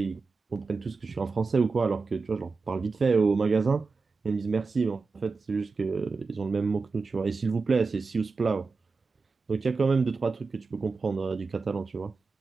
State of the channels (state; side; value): quieter; left; 4.3 dB